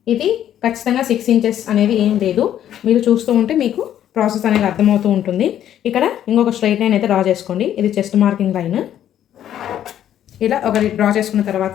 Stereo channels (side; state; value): right; quieter; 10.9 dB